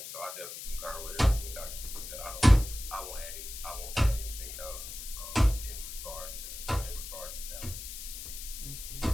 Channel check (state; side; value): noise; left; hiss, 9 dB below the sound